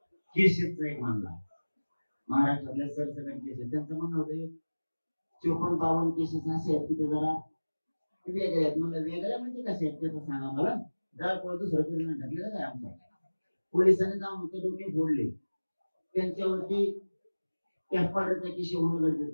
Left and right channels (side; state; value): both; inverted; correlation -1.00